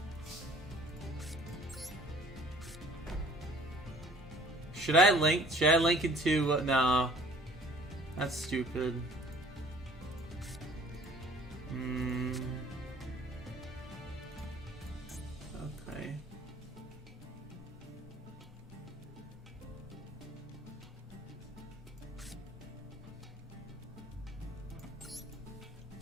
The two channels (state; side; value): normal; both; correlation 0.52